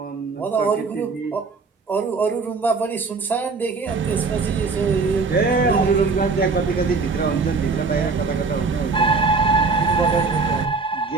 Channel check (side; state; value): left; quieter; 4.3 dB